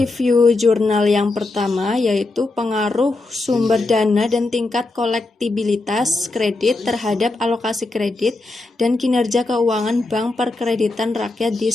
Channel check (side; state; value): right; quieter; 3.2 dB